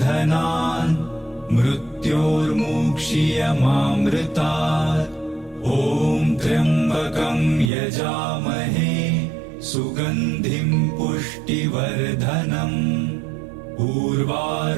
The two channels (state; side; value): drops out; left; at 7.7 s